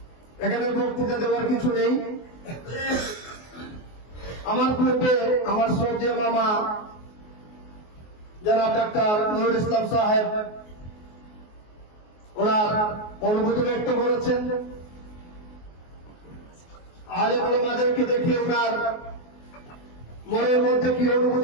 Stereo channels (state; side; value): late; right; 24 ms